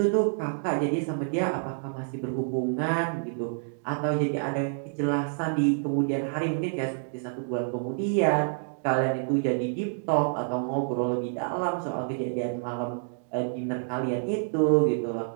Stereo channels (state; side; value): silent; left; digital silence